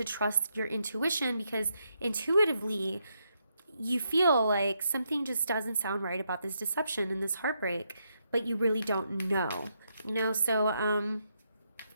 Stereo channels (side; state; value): both; inverted; correlation -0.80